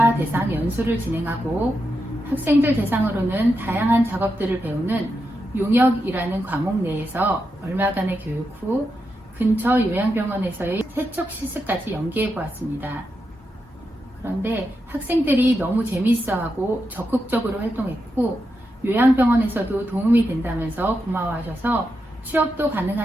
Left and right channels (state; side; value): normal; both; correlation 0.86